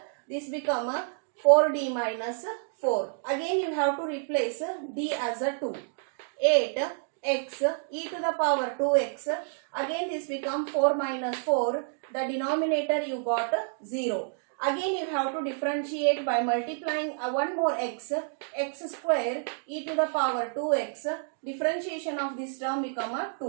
this become 4d minus 4. Again you have to replace d as a 2. 8x e to the power 2x, again this become 4 minus 4, the denominator you got 0. Again you have to differentiate by multiplying one more x square e to the power 2x, differentiation of this term become a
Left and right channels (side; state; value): left; silent; digital silence